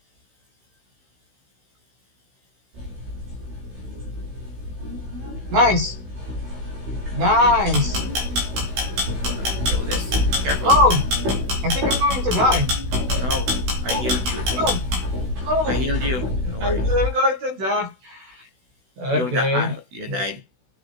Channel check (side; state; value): left; late; 16 ms